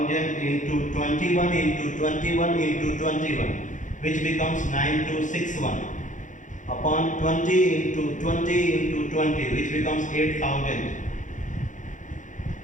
into 21 into 21 into 21, which becomes 9261, upon 20 into 20 into 20, which becomes 8000.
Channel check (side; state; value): right; late; 0.37 ms